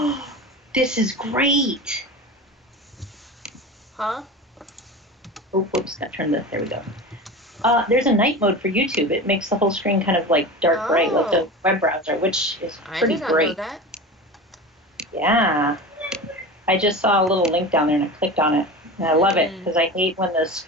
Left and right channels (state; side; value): normal; both; correlation 0.30